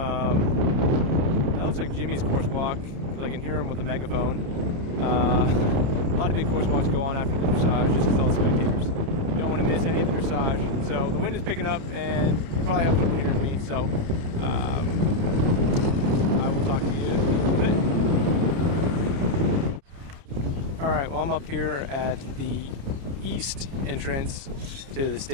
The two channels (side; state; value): left; late; 29 ms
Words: That looks like Jimmy's course walk. I can hear him with the megaphone. A lot of big course walks go on after the dressage just because all the spectators. You don't want to miss any of the dressage. So the wind is picking up, and you probably have trouble hearing me. So I will talk to you in a little bit. All right. Well, I'm up here at the east entrance to the